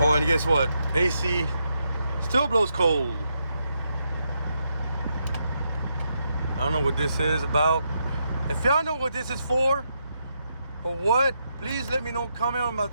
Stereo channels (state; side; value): inverted; both; correlation -0.81